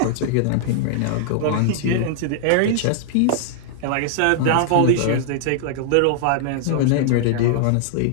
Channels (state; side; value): different; both; correlation -0.01